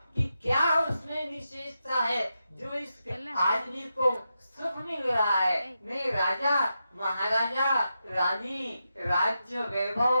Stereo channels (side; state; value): both; inverted; correlation -0.87